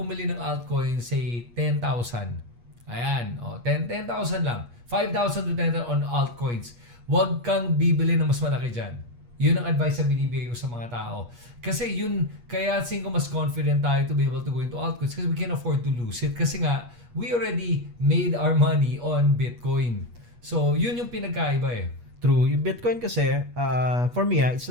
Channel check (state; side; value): late; left; 8.4 ms